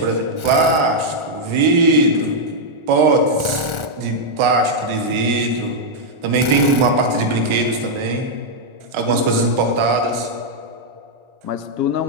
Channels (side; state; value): left; late; 1.4 ms